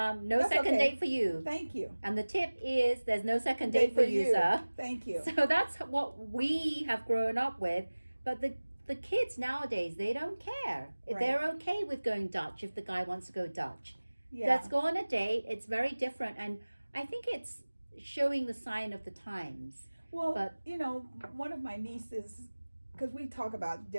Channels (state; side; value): inverted; both; correlation -1.00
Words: That's second okay. date for you. Thank you. And the tip is there's no second date for you, sir. Thank you. So that's what we have grown up with. But the kids nowadays, they don't care. If Right. they're okay with going Dutch if the guy wants to go Dutch. Yeah. Let's go on a date. It's very different. And I think it's showing the sign of the times. Well, But- one of my nieces, because we talk about